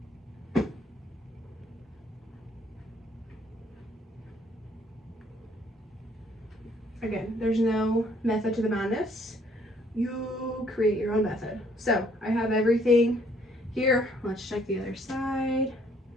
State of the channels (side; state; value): both; normal; correlation 0.64